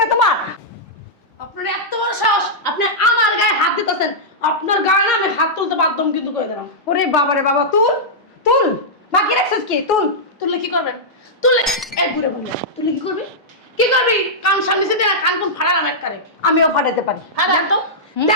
না তোমার? আপনার এত বড় সাহস, আপনি আমার গায়ে হাত দিতেছেন। আপনার গায়ে না আমি হাত তুলতে বাধ্য কিন্তু করে দিলাম। ওরে বাবা রে বাবা, তুল তুল, বাকি রাখছিস কি? তুল। তুললে কি করবেন? তুললে এক ঘুরে বললে তুললে কি করবি? কি করবি? কান সামনে দিয়ে কান কোন ফাড়ালাম একবারে। আমিও ফাটাতে পারি। দেন তো,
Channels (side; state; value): both; normal; correlation -0.10